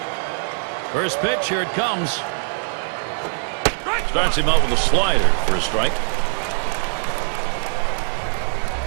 First pitch, here it comes. Starts him out with a slider for a strike.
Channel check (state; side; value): silent; left; 64 dB below the other